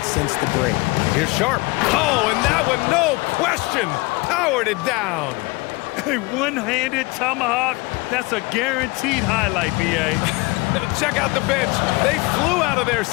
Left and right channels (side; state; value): right; quieter; 24.5 dB